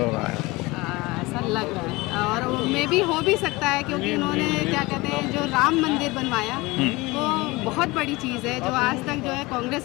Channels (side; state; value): right; quieter; 22.4 dB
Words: है। ऐसा लग रहा है, और मे भी हो भी सकता है क्योंकि उन्होंने क्या कहते हैं, जो राम मंदिर बनवाया वो बहुत बड़ी चीज़ है, जो आज तक जो है